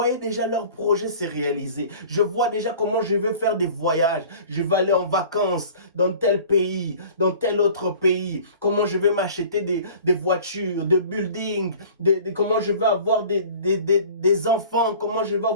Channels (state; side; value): inverted; both; correlation -0.45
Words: déjà leur projet se réaliser. Je vois déjà comment je vais faire des voyages. Je vais aller en vacances dans tel pays, dans tel autre pays. Comment je vais m'acheter des voitures, des buildings. Comment je vais avoir des enfants. Comment je vais